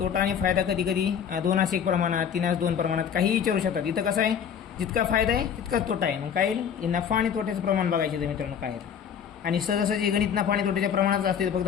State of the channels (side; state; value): right; quieter; 8.0 dB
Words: आणि फायदा कधी कधी 2:1 प्रमाणात, 3:2 प्रमाणात काही विचारू शकतात. इथं कसं आहे, जितका फायदा आहे तितकाच तोटा आहे. मग काय येईल, नफा आणि तोट्याचं प्रमाण बघायचं तर मित्रांनो काय आहे. आणि सहजासहजी गणित नफा आणि तोट्याच्या प्रमाणात असते, फक्त